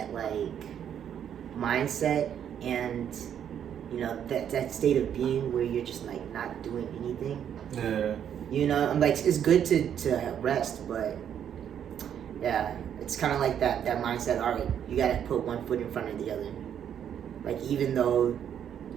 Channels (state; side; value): quieter; left; 9.1 dB